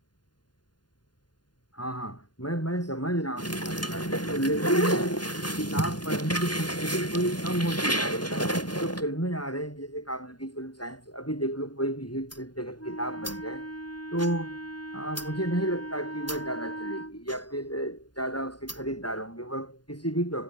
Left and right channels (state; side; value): late; right; 0.70 ms